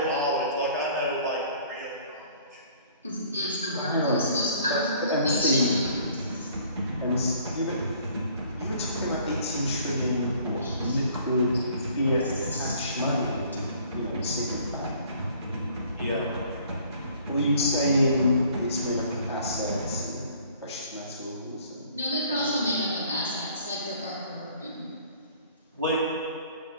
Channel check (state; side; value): inverted; both; correlation -0.56